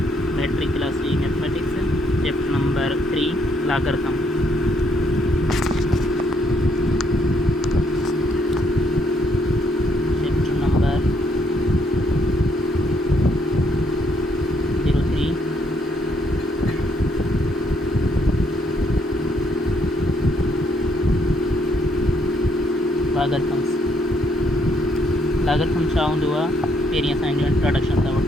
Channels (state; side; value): normal; both; correlation 0.71